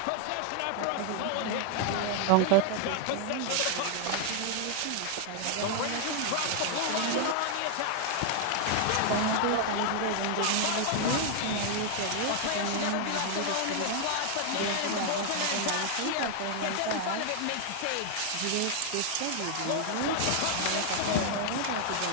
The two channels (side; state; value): both; different; correlation 0.00